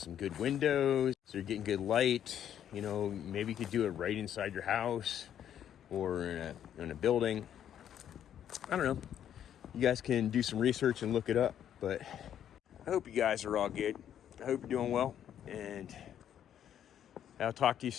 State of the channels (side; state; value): right; quieter; 10.0 dB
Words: good windows, so you're getting good light, you know, maybe you could do it right inside your house or in a building. I don't know. You guys can do some research and look it up. But I hope you guys are all good. I hope you're doing well, and I'll talk to you